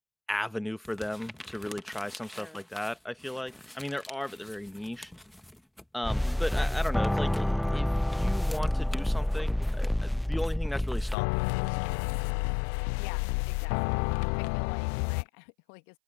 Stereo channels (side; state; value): right; drops out; at 11.2 s